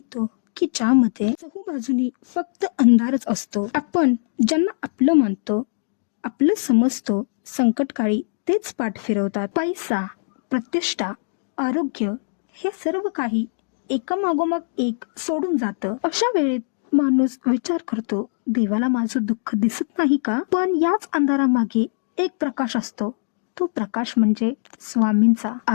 की ज्यामध्ये चहूबाजूनी फक्त अंधारच असतो. आपण ज्यांना आपलं मानतो, आपलं समजतो, संकटकाळी तेच पाठ फिरवतात. पैसा, प्रतिष्ठा, आरोग्य हे सर्व काही एका मागोमाग एक सोडून जातं. अशा वेळेत माणूस विचार करतो, देवाला माझं दुःख दिसत नाही का? पण याच अंधारामागे एक प्रकाश असतो. तो प्रकाश म्हणजे स्वामींचा.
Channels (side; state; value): right; silent; digital silence